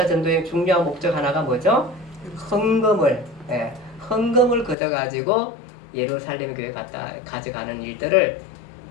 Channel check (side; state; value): right; drops out; at 4.8 s